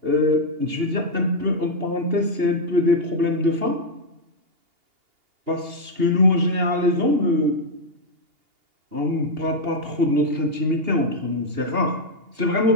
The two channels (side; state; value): left; late; 2.8 ms